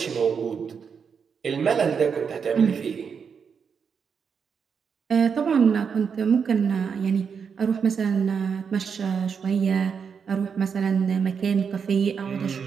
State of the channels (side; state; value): left; quieter; 6.4 dB